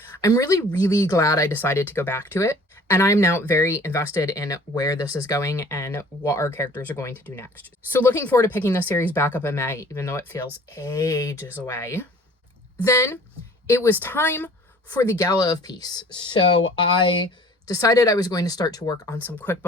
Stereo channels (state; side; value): normal; both; correlation 0.50